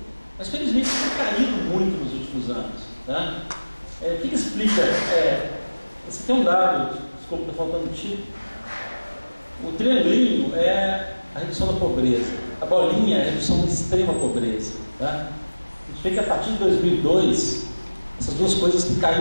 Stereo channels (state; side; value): inverted; both; correlation -1.00